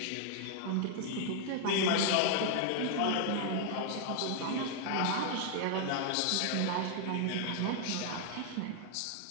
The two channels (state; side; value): different; both; correlation 0.00